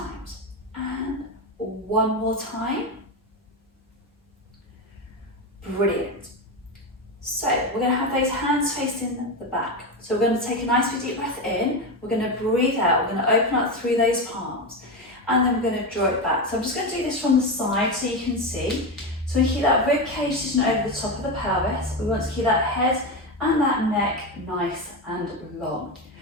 And 1 more time. Brilliant. So we're going to have those hands facing the back. So we're going to take a nice big deep breath in. We're going to breathe out. We're going to open up through those palms. And then we're going to draw it back. So I'm just going to do this from the side so you can see. So we keep that rib cage sitting over the top of the pelvis. We want to keep that head and that neck nice and long.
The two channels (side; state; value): both; normal; correlation 0.15